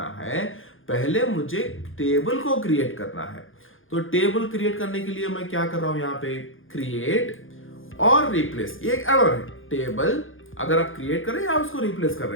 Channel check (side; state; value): right; late; 0.59 ms